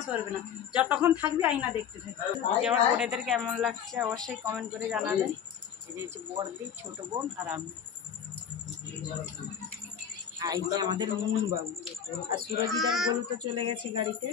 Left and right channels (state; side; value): quieter; right; 8.2 dB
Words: সরবে না, যতক্ষণ থাকবি আয়না দেখতে থাকবি। যে আমার বোনেদের কেমন লাগছে অবশ্যই কমেন্ট করে জানাবেন। এই যে হচ্ছে বড়দি, ছোট বোন আর আমি। আর এই যে আমাদের মুন বাবু আর সুরজিদার বলু তো চলে গেছে গাড়িতে।